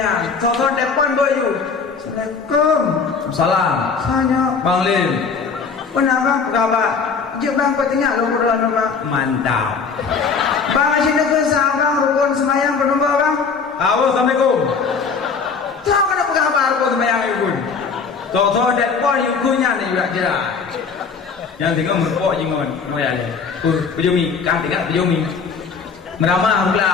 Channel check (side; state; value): right; quieter; 5.4 dB